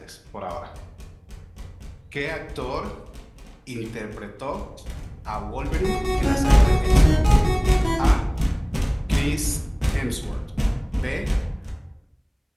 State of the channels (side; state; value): both; identical; correlation 1.00